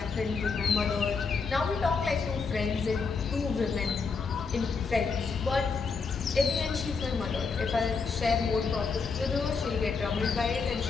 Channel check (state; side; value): quieter; right; 4.9 dB